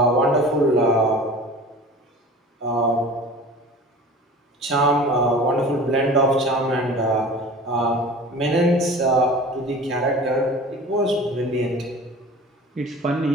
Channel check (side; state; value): both; normal; correlation 0.40